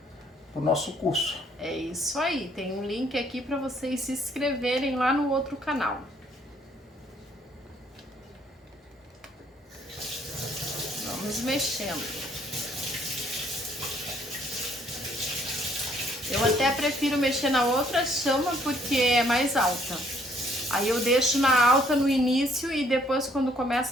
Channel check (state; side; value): normal; both; correlation 0.64